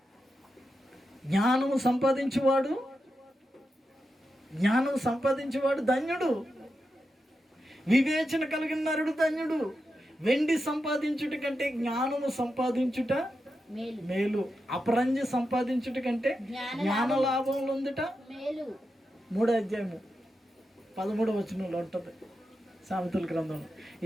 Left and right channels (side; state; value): both; normal; correlation 0.88